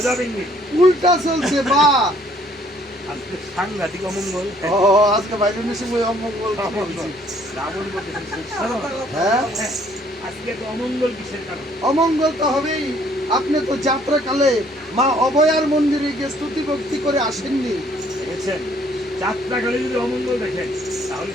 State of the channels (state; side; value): normal; both; correlation 0.62